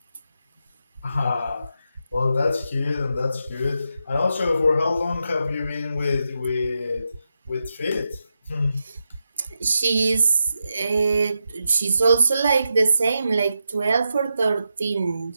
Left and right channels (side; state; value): both; inverted; correlation -0.86